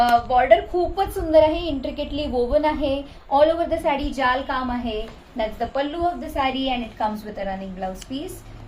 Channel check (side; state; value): both; identical; correlation 1.00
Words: Border खूपच सुंदर आहे. Intricately woven आहे. All over the sari जाल काम आहे. That's the pallu of the sari and it comes with a running blouse piece.